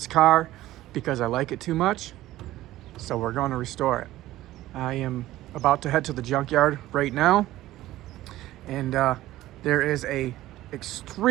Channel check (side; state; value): left; quieter; 15.5 dB